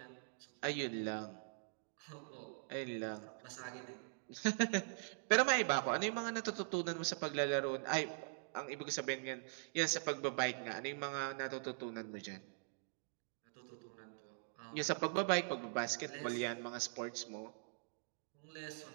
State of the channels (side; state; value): left; silent; digital silence